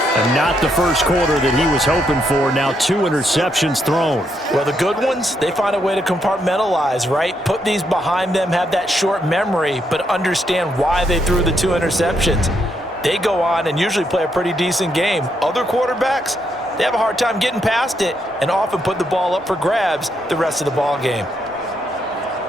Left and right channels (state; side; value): normal; both; correlation 0.77